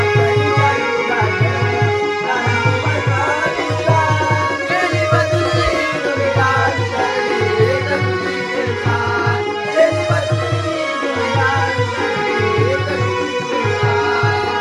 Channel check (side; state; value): both; identical; correlation 1.00